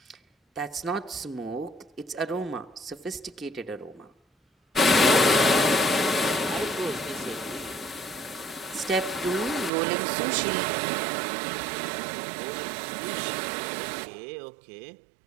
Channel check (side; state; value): left; drops out; at 9.7 s